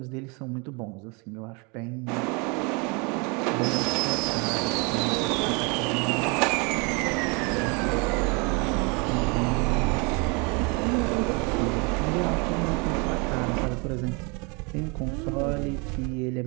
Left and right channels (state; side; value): quieter; left; 31.0 dB